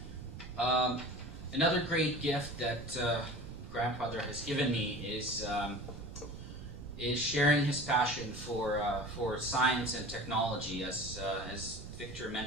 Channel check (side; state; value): right; noise; rumble, 12 dB below the sound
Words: Another great gift that grandfather has given me is sharing his passion for science and technology. As Victor